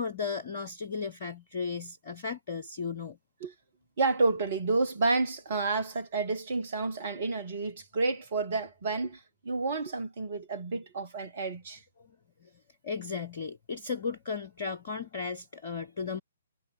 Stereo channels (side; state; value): both; inverted; correlation -0.67